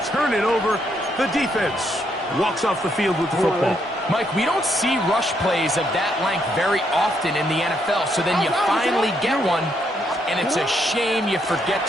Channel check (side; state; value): both; normal; correlation 0.75